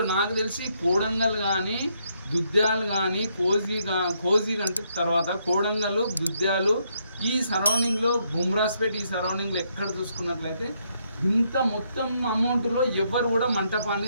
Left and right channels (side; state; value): both; inverted; correlation -0.75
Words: నాకు తెలిసి కోడంగల్ కానీ దుద్యాలు కానీ కోజీ అంటే తర్వాత కోడంగల్ దుద్యాలు ఈ సరౌండింగ్లో బుమ్రాస్పేట్ ఈ సరౌండింగ్లో ఎక్కడ చూసుకున్నట్లయితే ఇంత మొత్తం అమౌంట్లో ఎవరు కూడా